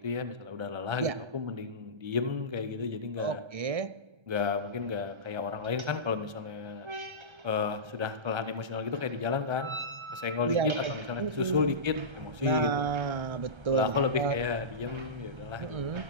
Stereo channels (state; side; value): late; left; 1.3 ms